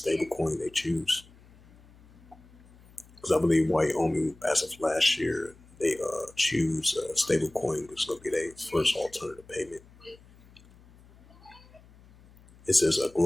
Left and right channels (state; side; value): noise; left; hum, 25 dB below the sound